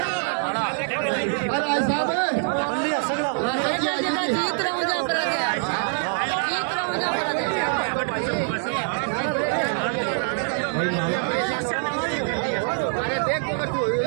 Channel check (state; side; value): silent; left; 62 dB below the other